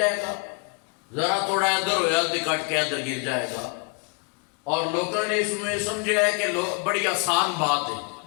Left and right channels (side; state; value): right; quieter; 33.2 dB